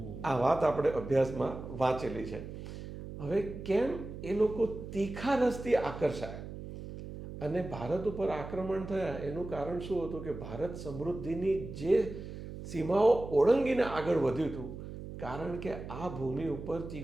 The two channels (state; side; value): noise; right; hum, 10 dB below the sound